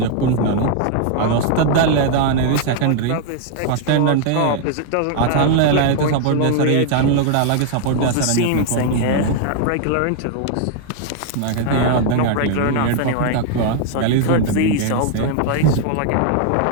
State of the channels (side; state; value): both; different; correlation 0.00